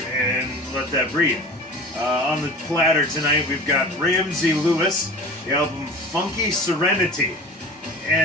let that breathe. On the platter tonight, we've got Ramsey Lewis, the album Funky Serenity.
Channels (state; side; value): normal; both; correlation 0.37